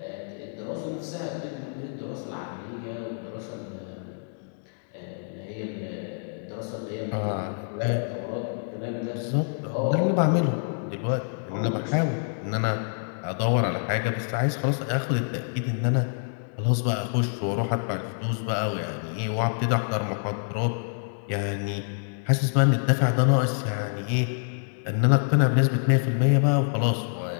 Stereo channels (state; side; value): silent; right; digital silence